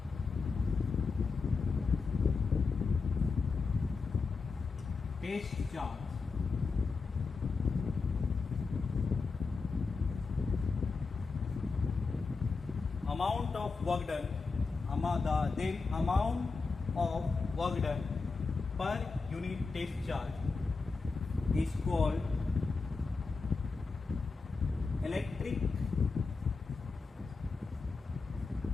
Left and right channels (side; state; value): right; quieter; 4.4 dB